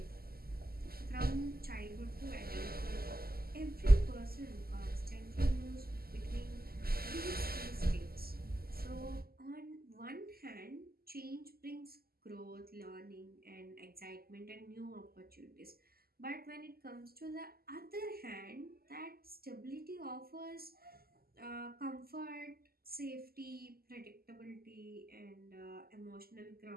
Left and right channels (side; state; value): left; late; 0.44 ms